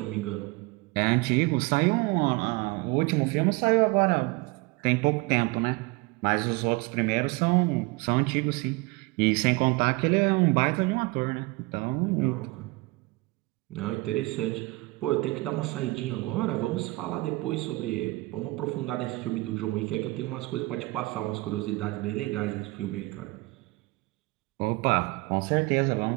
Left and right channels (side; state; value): left; quieter; 23.5 dB